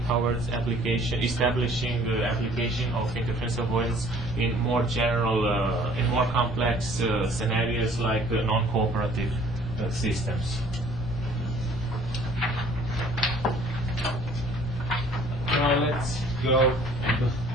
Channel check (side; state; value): both; normal; correlation 0.55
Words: towards establishing the application of interference avoidance in more general, in more complex scenarios like non-cooperative systems. Now let's go into